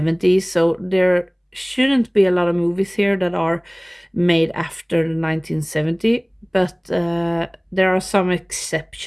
So there shouldn't be a lot of movies here that are made after the 1970, but there are some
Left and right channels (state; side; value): identical; both; correlation 1.00